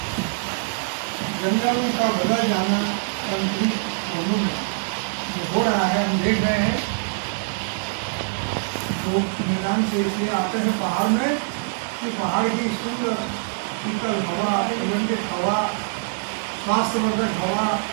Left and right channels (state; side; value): silent; left; digital silence